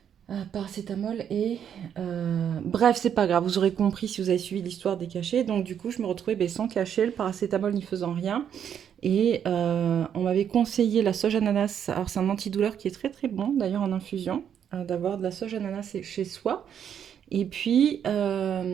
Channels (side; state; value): left; quieter; 8.7 dB